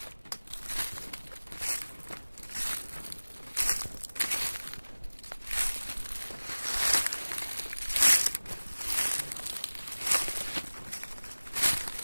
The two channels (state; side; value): inverted; both; correlation -1.00